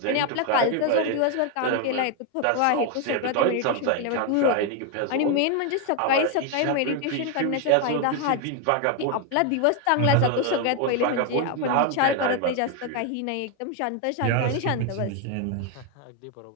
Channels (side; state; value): both; different; correlation 0.01